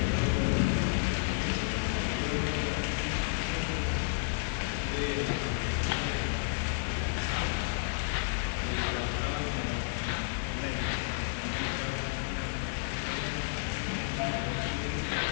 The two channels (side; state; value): right; silent; digital silence